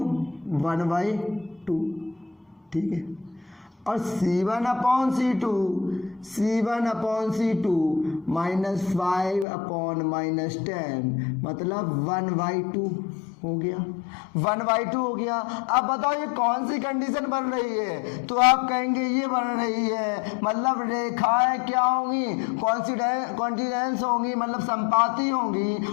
1/2, ठीक है। और c1/c2 -5/10 मतलब 1/2 हो गया, 1/2 हो गया। अब बताओ ये कौन सी कंडीशन बन रही है? तो आप कहेंगे ये बन रही है, मतलब रेखाएं क्या होंगी, कॉन्टिनेंस होंगी, मतलब संपाती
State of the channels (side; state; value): right; drops out; at 9.5 s